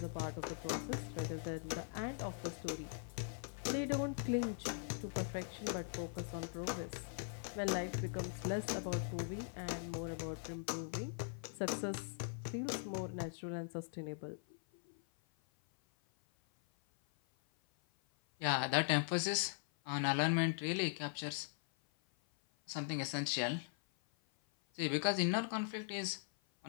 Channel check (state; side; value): silent; right; 50 dB below the other